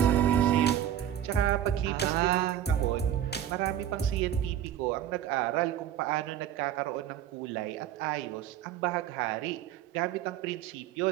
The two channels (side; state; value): left; quieter; 10.7 dB